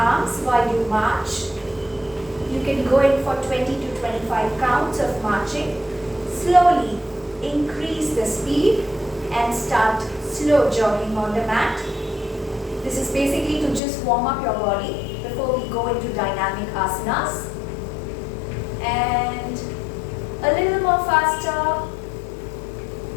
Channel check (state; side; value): drops out; right; at 13.8 s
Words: while you march. You can go in for 20 to 25 counts of marching. Slowly increase the speed and start slow jogging on the mat. This is basically to just warm up your body before we go into dynamic asanas. And a little more faster.